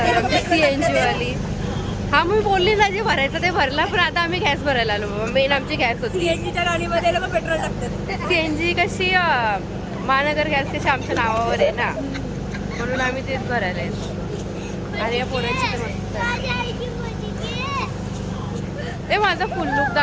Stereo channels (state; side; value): identical; both; correlation 1.00